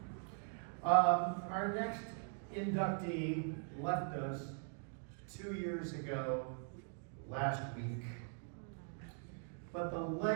Our next inductee left us 2 years ago, last week. But the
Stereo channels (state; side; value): silent; left; 50 dB below the other